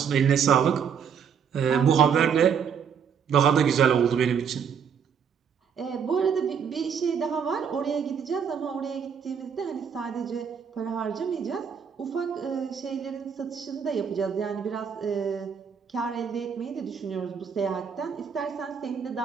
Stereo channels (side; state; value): left; quieter; 7.3 dB